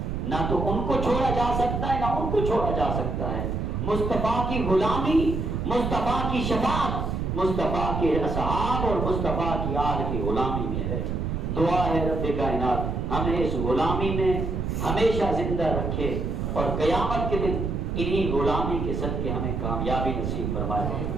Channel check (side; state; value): right; noise; rumble, 2 dB below the sound